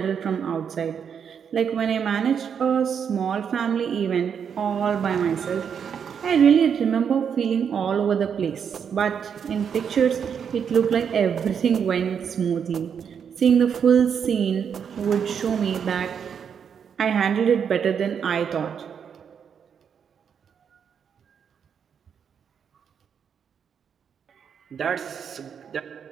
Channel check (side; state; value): left; quieter; 7.4 dB